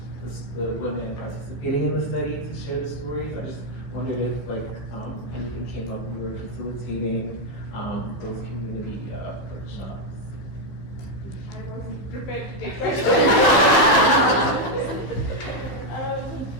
women participating in the study to share the stories? I just wondered if anything came up when we were facilitating those community workshops. I wasn't prepared to take questions.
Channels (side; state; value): right; late; 15 ms